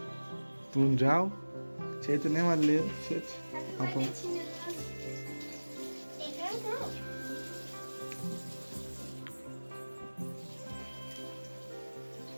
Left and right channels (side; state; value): both; inverted; correlation -1.00